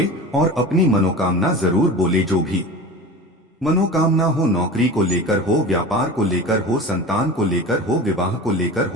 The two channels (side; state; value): both; normal; correlation 0.34